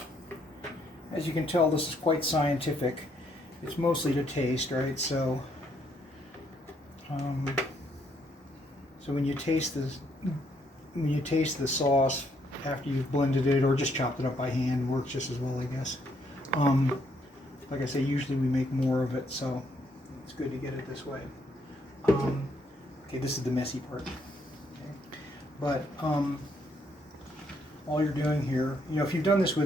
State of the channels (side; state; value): both; normal; correlation 0.71